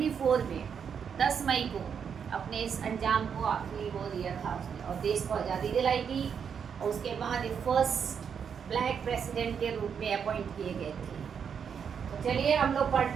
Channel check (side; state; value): left; quieter; 7.1 dB